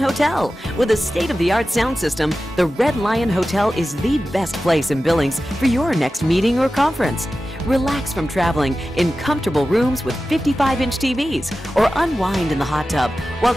With a state-of-the-art sound system, the Red Lion Hotel is the best place in Billings for your next meeting or conference. Relax from traveling in comfortable rooms with 55-inch TVs, or unwind in the hot tub while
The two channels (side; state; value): both; normal; correlation 0.94